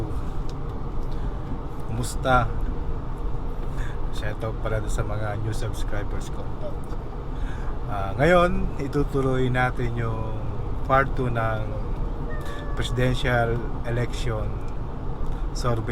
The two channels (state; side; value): identical; both; correlation 1.00